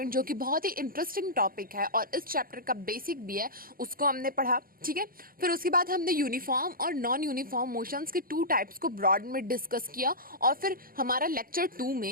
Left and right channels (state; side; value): late; left; 0.42 ms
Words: जो कि बहुत ही इंटरेस्टिंग टॉपिक है और इस चैप्टर का बेसिक भी है, उसको हमने पढ़ा. ठीक है, फिर उसके बाद हमने यूनिफॉर्म और नॉन यूनिफॉर्म मोशंस के टू टाइप्स को ब्रॉड में डिस्कस किया और फिर हमारा लेक्चर 2